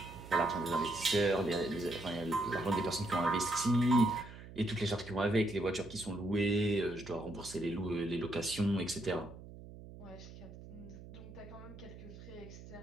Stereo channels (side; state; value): right; noise; hum, 15 dB below the sound